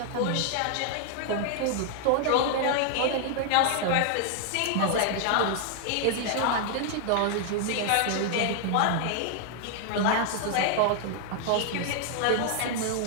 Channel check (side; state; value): both; different; correlation 0.00